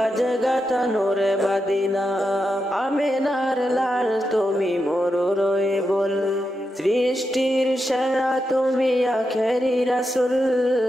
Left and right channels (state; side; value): normal; both; correlation 0.87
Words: গাথা নূরে মদিনা। আমিনার লাল তুমি মরুর বল, সৃষ্টির সেরা তুমি আখেরি রাসূল,